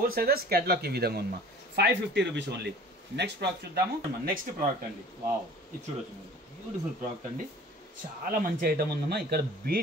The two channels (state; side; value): normal; both; correlation 0.46